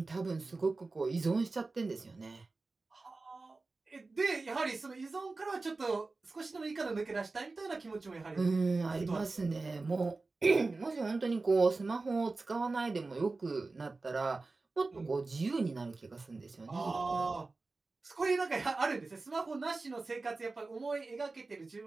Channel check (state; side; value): quieter; left; 3.6 dB